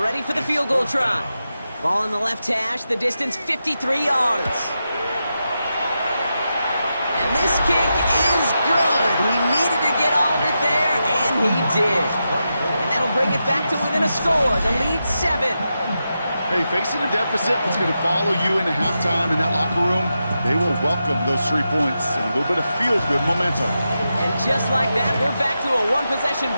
for the field goal try. Ball in the left hash, the distance 53 yards. And this kick is good. He needed to get all of it there, and he did. And that'll bring it back to within a score. The lead 7. Hey, facing a deficit that's going to follow you into halftime in that locker room, they will welcome those 3 points and a little bit of feel-good momentum. And just like that, we're back to a one-possession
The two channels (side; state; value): both; inverted; correlation -0.88